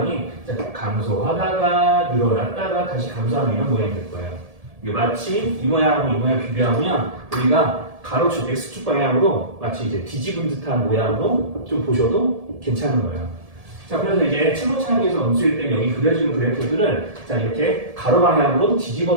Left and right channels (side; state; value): left; late; 1.7 ms